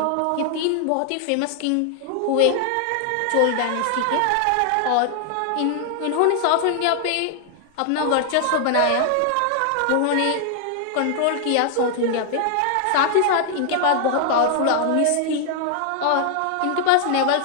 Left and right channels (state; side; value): different; both; correlation 0.00